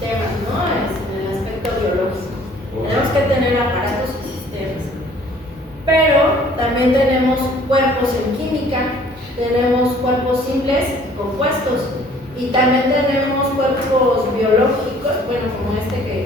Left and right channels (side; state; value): both; normal; correlation 0.55